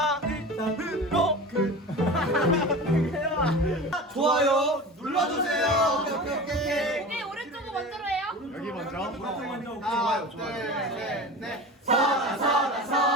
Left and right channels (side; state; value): both; normal; correlation 0.33